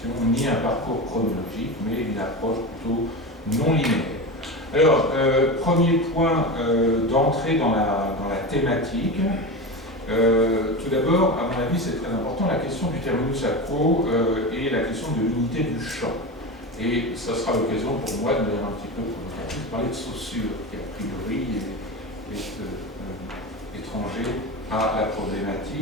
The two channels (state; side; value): normal; both; correlation 0.23